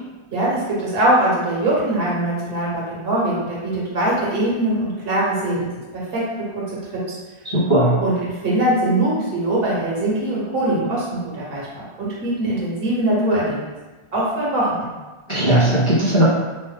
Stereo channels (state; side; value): late; right; 1.4 ms